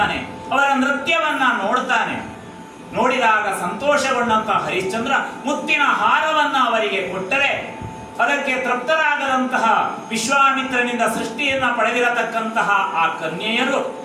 ಅವರ ನೃತ್ಯವನ್ನ ನೋಡ್ತಾನೆ. ನೋಡಿದಾಗ ಸಂತೋಷಗೊಂಡಂತ ಹರಿಶ್ಚಂದ್ರ ಮುತ್ತಿನ ಹಾರವನ್ನ ಅವರಿಗೆ ಕೊಟ್ಟರೆ ಅದಕ್ಕೆ ತೃಪ್ತರಾಗದಂತಹ ವಿಶ್ವಾಮಿತ್ರನಿಂದ ಸೃಷ್ಟಿಯನ್ನ ಪಡೆದಿರತಕ್ಕಂತಹ ಆ ಕನ್ಯೆಯರು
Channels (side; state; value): both; identical; correlation 1.00